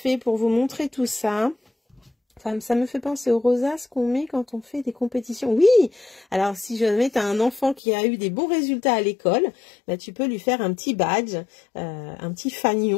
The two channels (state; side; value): drops out; right; at 7.8 s